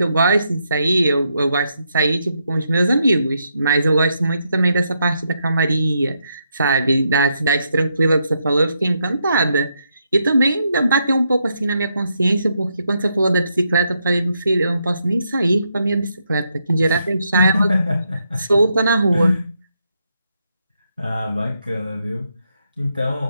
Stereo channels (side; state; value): both; inverted; correlation -0.79